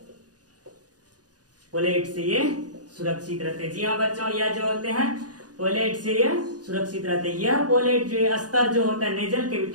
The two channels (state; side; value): late; left; 0.68 ms